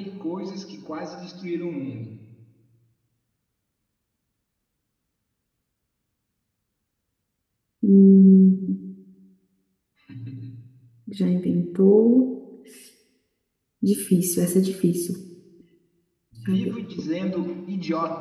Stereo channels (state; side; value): identical; both; correlation 1.00